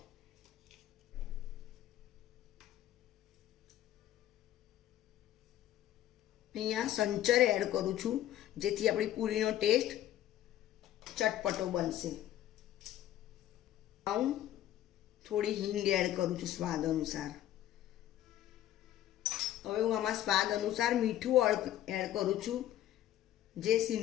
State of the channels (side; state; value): right; quieter; 12.6 dB